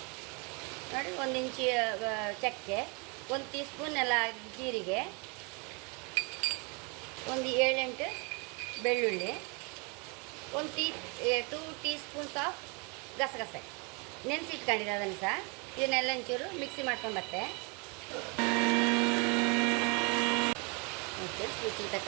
ನೋಡಿ 1 ಇಂಚು ಚಕ್ಕೆ, 1 ಟೀ ಸ್ಪೂನ್ ಎಲ್ಲ ಜೀರಿಗೆ, 7-8 ಬೆಳ್ಳುಳ್ಳಿ, 2 ಟೀ ಸ್ಪೂನ್ಸ್ ಆಫ್ ಗಸಗಸೆ ನೆನೆಸಿಟ್ಕೊಂಡಿದ್ದೆ. ಅದನ್ನು ಸಹ ಇದನ್ನೆಲ್ಲ ಒಂಚೂರು ಮಿಕ್ಸಿ ಮಾಡ್ಕೊಂಡು ಬತ್ತೆ. ರುಚಿಗೆ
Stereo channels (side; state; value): left; quieter; 32.2 dB